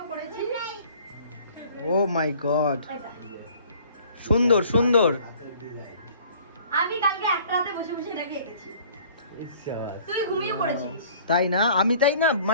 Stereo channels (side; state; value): both; inverted; correlation -0.53